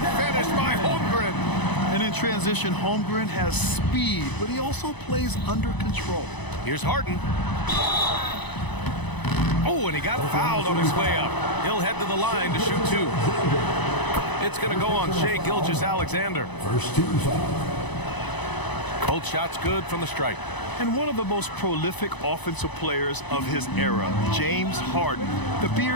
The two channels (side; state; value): right; late; 1.0 ms